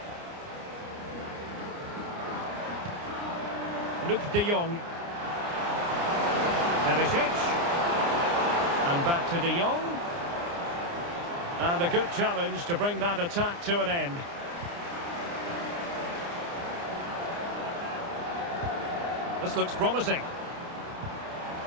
Luke de Jong. Perisic. And back to de Jong. And a good challenge to bring that attack to an end. This looks promising.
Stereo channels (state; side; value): late; left; 29 ms